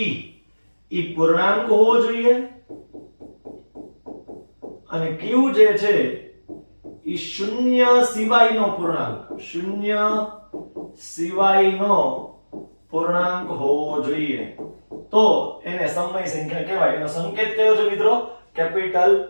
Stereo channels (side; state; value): both; inverted; correlation -1.00